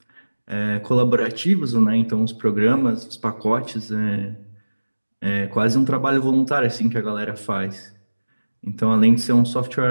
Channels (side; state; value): both; inverted; correlation -1.00